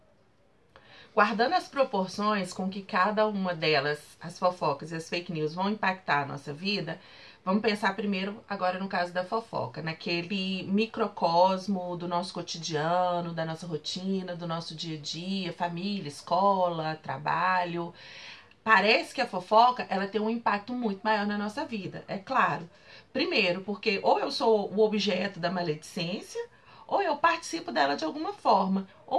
Guardando as proporções com que cada uma delas, as fofocas e as fake news, vão impactar a nossa vida, vamos pensar primeiro, agora no caso da fofoca, naquele microcosmo do nosso cotidiano, da nossa rotina, do nosso dia a dia, família, escola, trabalho. Parece que a fofoca, ela tem um impacto muito maior na nossa vida, é claro. Primeiro, porque ou eu sou o objeto da maledicência, ou eu participo dela de alguma forma,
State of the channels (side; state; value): both; identical; correlation 1.00